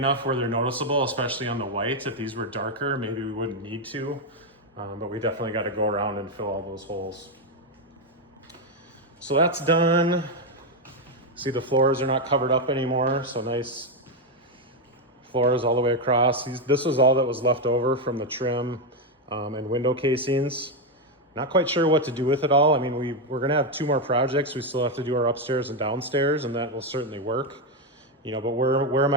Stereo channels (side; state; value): both; normal; correlation 0.05